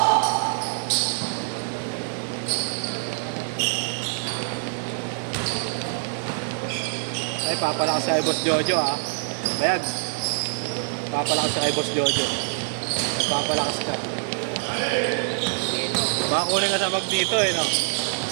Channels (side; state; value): left; silent; 62 dB below the other